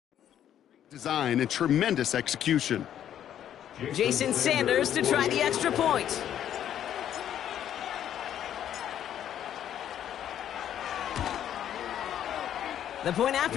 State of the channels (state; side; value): quieter; right; 10.4 dB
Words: Design and tremendous execution. Jason Sanders to try the extra point. The point